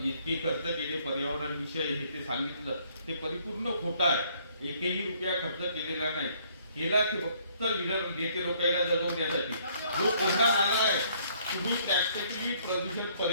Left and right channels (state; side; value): inverted; both; correlation -0.64